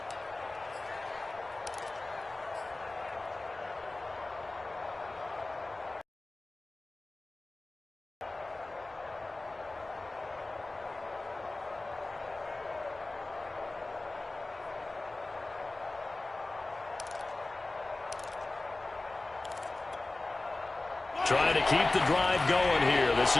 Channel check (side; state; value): right; quieter; 3.0 dB